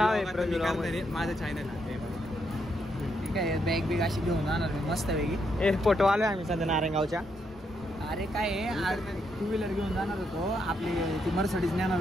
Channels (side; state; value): both; normal; correlation 0.78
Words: आहे प्रज्वल माझं चॅनल आहे. ठीक आहे बॅग बिग अशी घेऊन जाणार मी मस्त पैकी. ए फोटो आलोय आम्ही सध्या नारायणगावच्या. अरे काय आहे 2 व्हीलर घेऊन जाणार होतो आपली ती मर्सिडीज नेणार